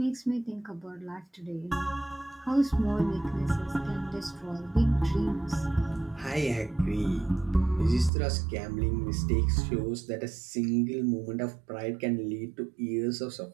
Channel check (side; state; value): left; drops out; at 8.1 s